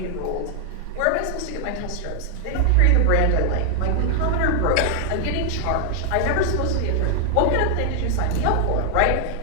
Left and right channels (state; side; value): different; both; correlation 0.00